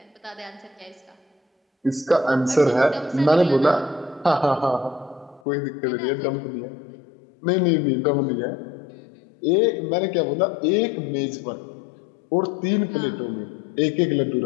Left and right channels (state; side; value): drops out; right; at 5.4 s